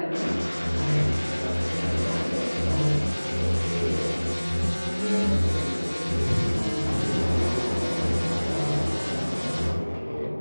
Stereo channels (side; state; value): both; inverted; correlation -1.00